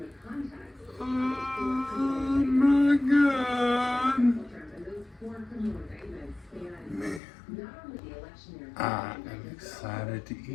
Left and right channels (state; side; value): drops out; right; at 7.2 s